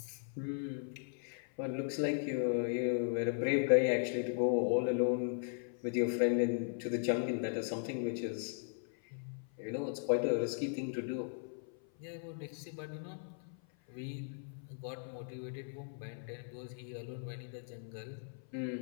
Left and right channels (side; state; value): right; silent; 53 dB below the other